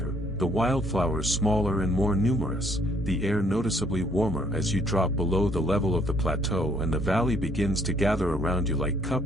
the wildflowers smaller and more numerous, the air noticeably warmer as you drop below the level of the plateau and the valley begins to gather around you like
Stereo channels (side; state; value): both; normal; correlation 0.65